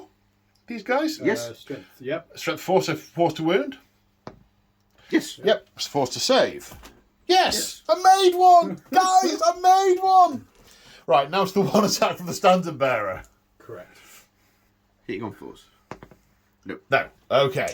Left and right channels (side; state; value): both; identical; correlation 1.00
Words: these guys? Yes. Strength. Yep. Strength 4, so 4 to wound? Yes. Yep, it's 4 to save. Yes! I made one! Guys, I made one! Right, now it's the 1 attack from the standard bearer. Correct. Hitting on 4s. No.